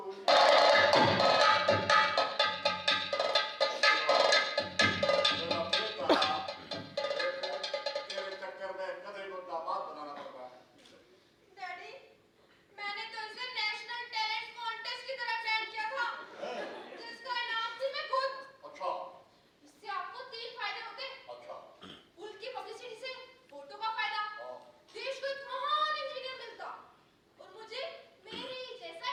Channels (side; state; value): both; identical; correlation 1.00